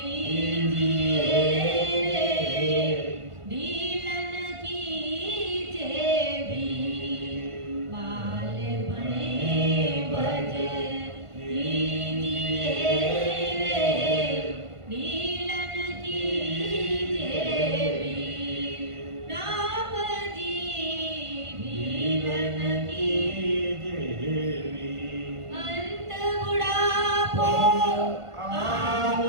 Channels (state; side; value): late; left; 1.5 ms